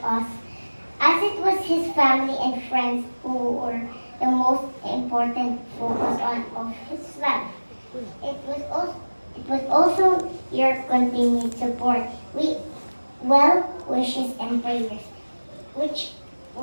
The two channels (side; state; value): both; inverted; correlation -1.00